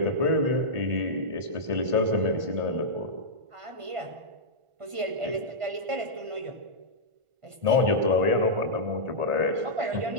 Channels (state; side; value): late; left; 1.5 ms